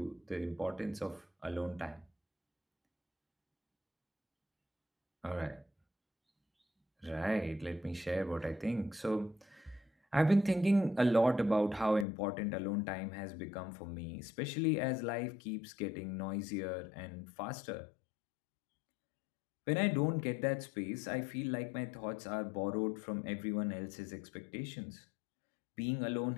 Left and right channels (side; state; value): right; drops out; at 12.1 s